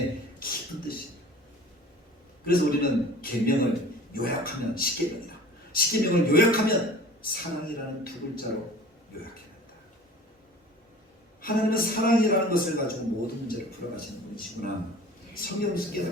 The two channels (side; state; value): both; normal; correlation 0.44